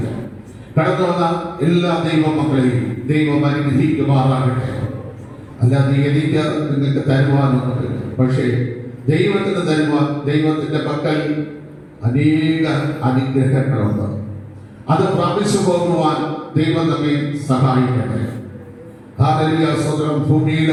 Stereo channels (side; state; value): both; identical; correlation 1.00